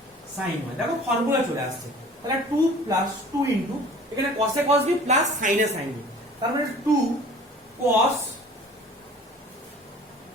sin y, দেখো ফর্মুলা চলে আসছে। তাহলে 2 প্লাস 2 ইনটু এখানে cos a cos b plus sin a sin b, তার মানে 2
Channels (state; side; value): normal; both; correlation 0.47